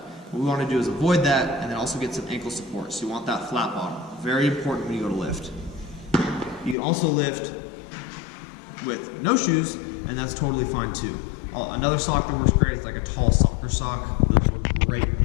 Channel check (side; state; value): right; drops out; at 6.8 s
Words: What we want to do is avoid that and then also get some ankle support. So you want that flat bottom. Very important when you go to lift. You can also lift with no shoes, and that's totally fine too. Another sock that works great is like a tall soccer sock. Those work great when